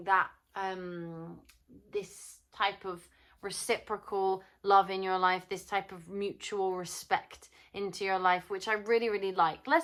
that, this type of reciprocal love in your life, this type of mutual respect into your life, which I really, really like.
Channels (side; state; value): both; identical; correlation 1.00